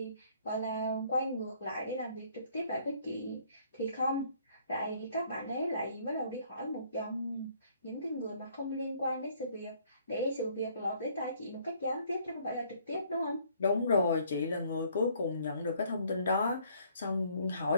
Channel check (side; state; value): both; inverted; correlation -0.62